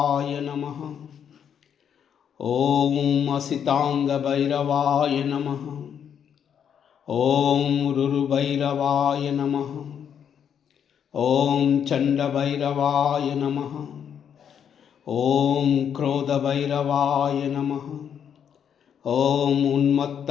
నమః. ఓం అసితాంగభైరవాయ నమః. ఓం రురుభైరవాయ నమః. ఓం చండభైరవాయ నమః. ఓం క్రోధభైరవాయ నమః. ఓం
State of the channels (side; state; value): right; quieter; 8.3 dB